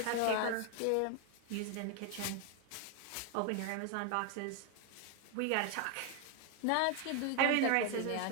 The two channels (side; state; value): both; different; correlation 0.01